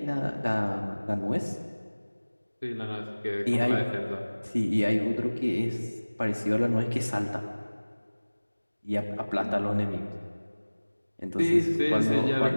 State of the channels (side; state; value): both; inverted; correlation -1.00